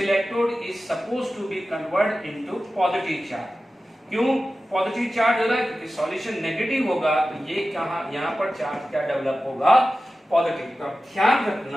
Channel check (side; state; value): both; normal; correlation 0.94